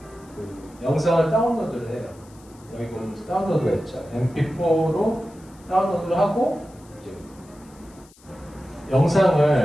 그 영상을 다운로드를 해요. 여기 보면 다운로드가 있죠. MP4로 다운로드를 하고, 이제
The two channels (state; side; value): noise; left; hiss, 27 dB below the sound